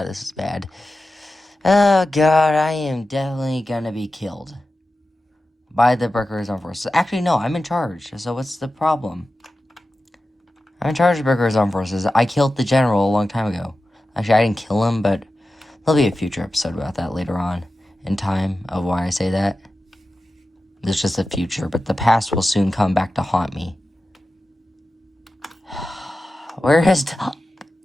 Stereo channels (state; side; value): normal; both; correlation 0.93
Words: this is bad. Oh god, I am definitely gonna be killed by the Berkers Armed Forces. Actually, no, I'm in charge. So what's the problem? I'm in charge of Berkers Armed Forces. I killed the general a long time ago. Actually, I didn't kill him, but there'll be a future episode about that later on in time of why I say that. It's just a future, but the past will soon come back to haunt me. Where is Dob?